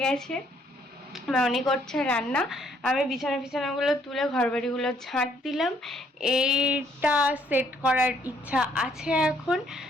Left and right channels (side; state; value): both; normal; correlation 0.67